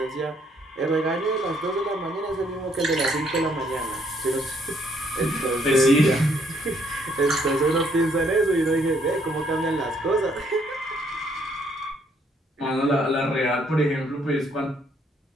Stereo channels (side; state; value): both; normal; correlation 0.68